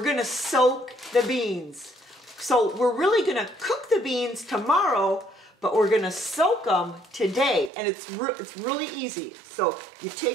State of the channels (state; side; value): drops out; left; at 7.7 s